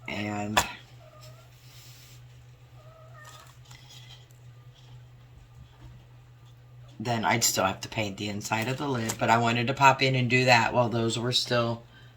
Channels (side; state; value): both; identical; correlation 1.00